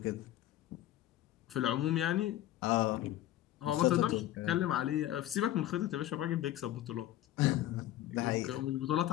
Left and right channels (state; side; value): quieter; right; 13.7 dB